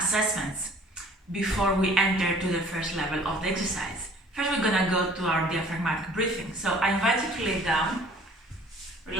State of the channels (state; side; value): normal; both; correlation 0.53